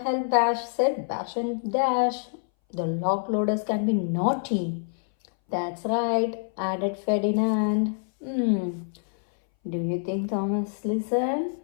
Bash said. Bash and Dash. The log loaders can be naughty. That's right, added Ferdinand. Do you think Thomas listened?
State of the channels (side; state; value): right; silent; 60 dB below the other